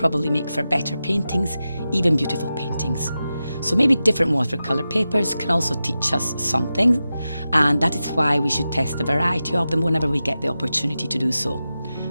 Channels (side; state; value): both; inverted; correlation -0.92